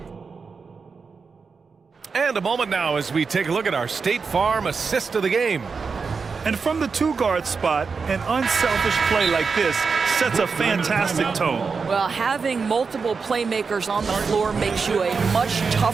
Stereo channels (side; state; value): left; quieter; 5.1 dB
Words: And a moment now as we take a look at our State Farm assist of the game. And from the two-guard spot, an unselfish play like this sets a fantastic tone. Well, having multiple playmakers on the floor makes you a much